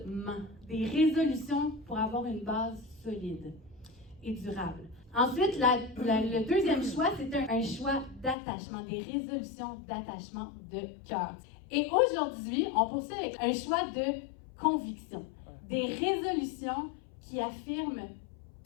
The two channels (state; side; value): drops out; right; at 8.3 s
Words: des résolutions pour avoir une base solide et durable. Ensuite, le deuxième choix, c'est un choix d'attachement, des résolutions d'attachement de cœur. Et aujourd'hui, on poursuit avec un choix de conviction, des résolutions qui affirment